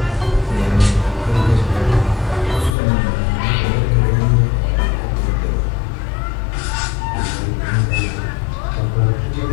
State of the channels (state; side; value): drops out; right; at 2.8 s